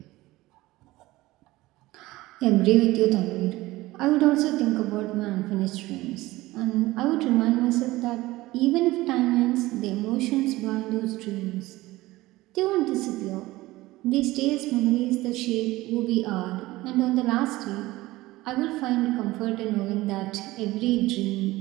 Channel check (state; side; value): quieter; left; 18.6 dB